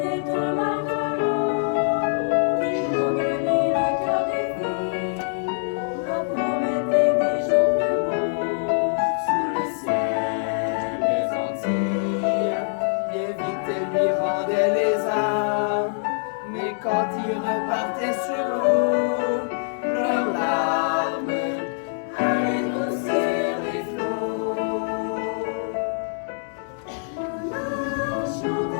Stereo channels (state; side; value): silent; right; digital silence